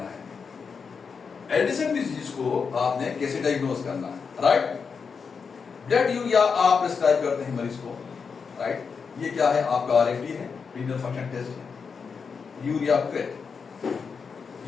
है एडिसन डिजीज को, आपने कैसे डायग्नोज करना है, राइट। ब्लड यूरिया आप प्रिस्क्राइब करते हैं मरीज को, राइट। ये क्या है? आपका RFT है, रीनल फंक्शन टेस्ट है। Urea crate,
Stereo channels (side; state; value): right; quieter; 5.7 dB